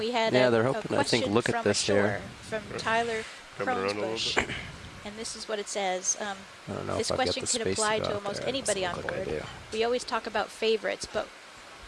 had Yeah, a, they're a hoping, I think, question look at from this ashore here. from Right. Tyler Coming around a little Kronesbush. bit. And this is what it says. I don't know This if I've got question the can space apply to, to go out almost there. It anybody doesn't on look like I board. do. We always talk about favorites, but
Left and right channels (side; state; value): both; identical; correlation 1.00